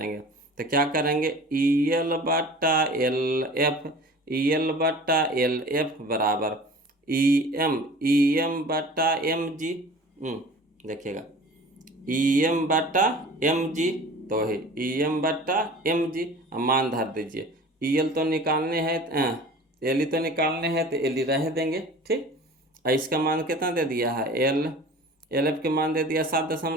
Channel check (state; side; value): normal; both; correlation 0.42